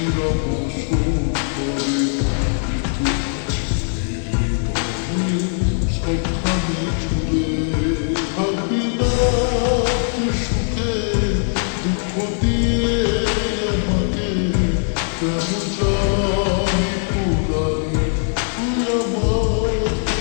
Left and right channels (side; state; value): right; silent; digital silence